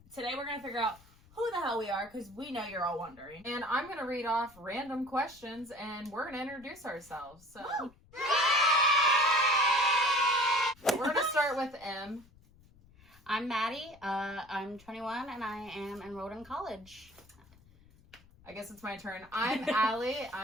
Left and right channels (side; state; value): left; noise; rumble, 26 dB below the sound